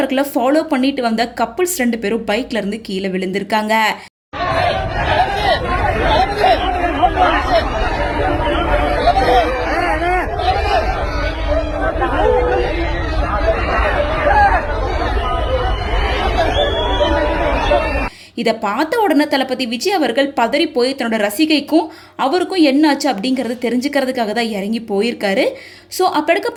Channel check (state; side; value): identical; both; correlation 1.00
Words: ஃபாலோ பண்ணிட்டு வந்த கப்புள்ஸ் 2 பேரும் பைக்ல இருந்து கீழே விழுந்திருக்காங்க. இதை பார்த்த உடனே தளபதி விஜய் அவர்கள் பதறி போய் தன்னோட ரசிகைக்கும் அவருக்கும் என்னாச்சு அப்படிங்கிறத தெரிஞ்சுக்கிறதுக்காக தான் இறங்கி போயிருக்காரு. ஸோ அப்போ